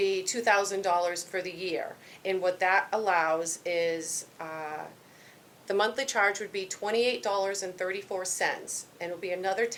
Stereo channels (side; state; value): both; identical; correlation 1.00